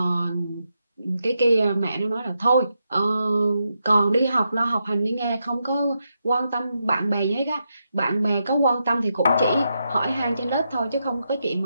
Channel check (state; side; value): inverted; both; correlation -0.84